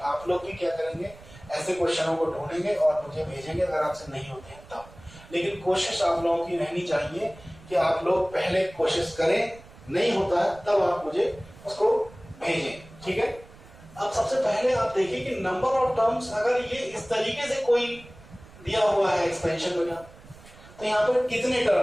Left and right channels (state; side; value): noise; right; rumble, 21 dB below the sound